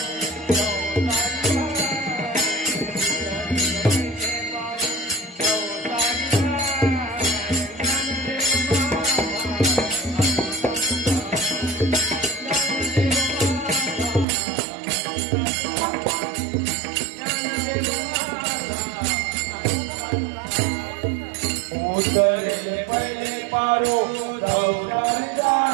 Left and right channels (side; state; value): left; drops out; at 14.2 s